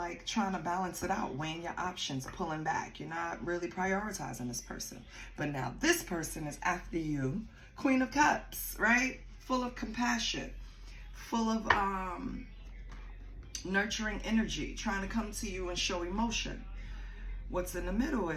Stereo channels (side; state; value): both; identical; correlation 1.00